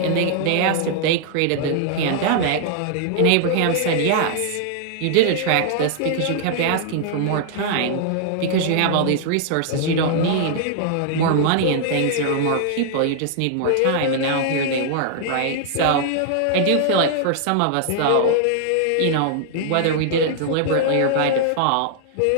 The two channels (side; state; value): both; different; correlation -0.01